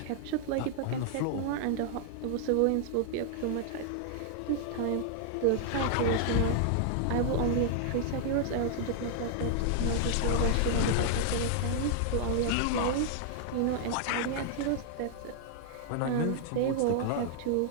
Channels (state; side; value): different; both; correlation -0.01